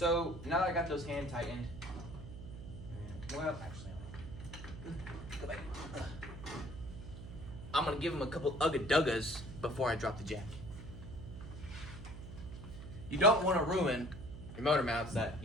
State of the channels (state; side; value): noise; right; hum, 11 dB below the sound